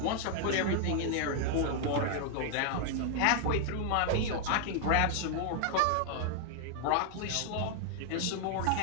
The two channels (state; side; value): different; both; correlation 0.00